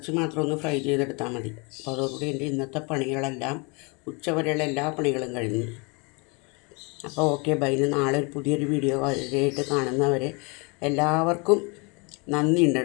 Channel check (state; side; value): quieter; right; 30.8 dB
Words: മാത്രം ഒന്ന് ഫ്രൈ ചെയ്തെടുത്താൽ മതി. അപ്പോൾ അതോടുകൂടി എൻ്റെ ഇന്നത്തെ പണികളെല്ലാം, ഉച്ചവരെയുള്ള എല്ലാ പണികളും കഴിഞ്ഞു. അപ്പോൾ ഓക്കെ ബൈ. നാളെ ഒരു പുതിയൊരു വീഡിയോ ആയിട്ട് കാണുന്നവരെ എല്ലാവർക്കും നന്ദിയുണ്ട്